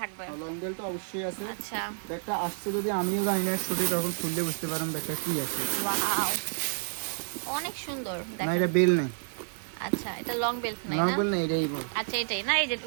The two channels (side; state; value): left; silent; digital silence